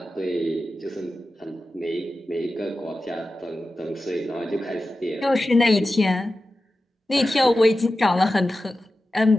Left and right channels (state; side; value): normal; both; correlation 0.93